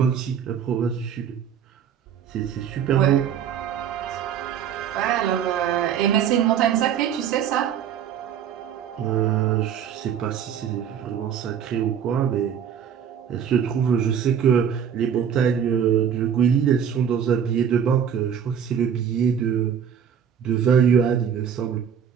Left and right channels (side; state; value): left; quieter; 8.3 dB